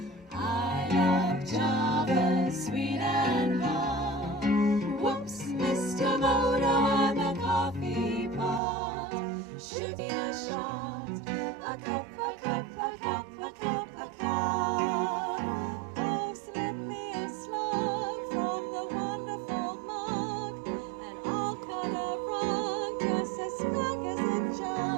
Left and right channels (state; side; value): drops out; left; at 8.6 s